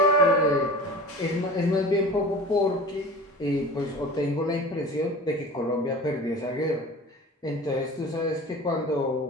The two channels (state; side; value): normal; both; correlation 0.37